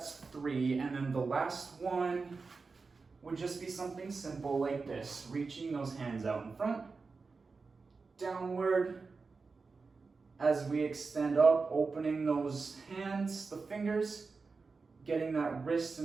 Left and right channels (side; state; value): left; quieter; 4.4 dB